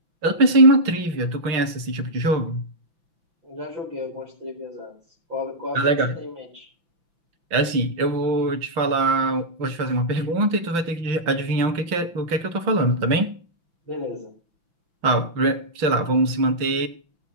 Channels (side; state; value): left; late; 5.9 ms